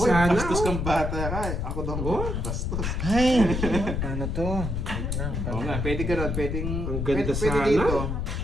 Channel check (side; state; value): left; noise; rumble, 2 dB below the sound